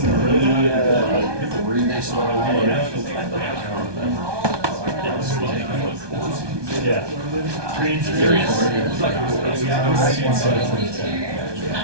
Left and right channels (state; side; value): late; left; 1.2 ms